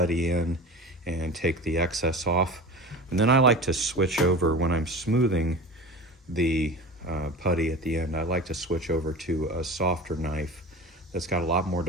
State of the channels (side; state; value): both; normal; correlation 0.33